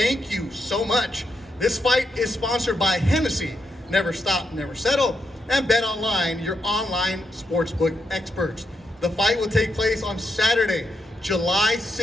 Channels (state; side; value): normal; both; correlation 0.82